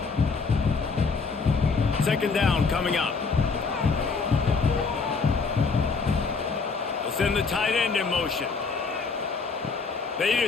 2nd down coming up. They'll send the tight end in motion. They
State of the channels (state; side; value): quieter; right; 4.7 dB